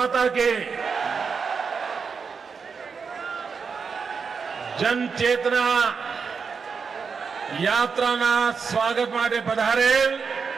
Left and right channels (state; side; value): quieter; left; 5.6 dB